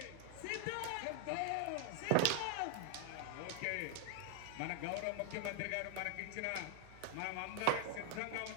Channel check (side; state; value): both; different; correlation 0.00